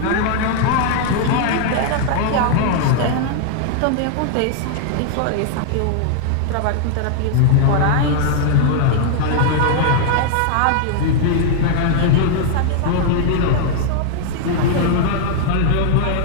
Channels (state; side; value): different; both; correlation 0.00